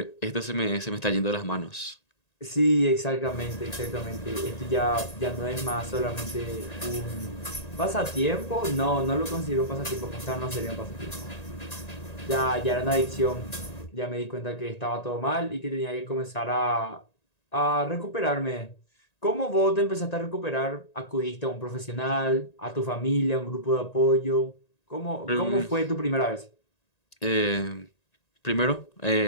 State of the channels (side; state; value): right; late; 1.9 ms